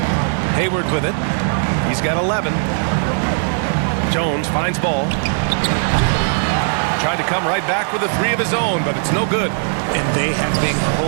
Hayward with it. He's got 11. Jones finds Ball. Tried to come right back with a 3 of his own, but it's no good. And they have been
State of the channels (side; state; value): left; silent; digital silence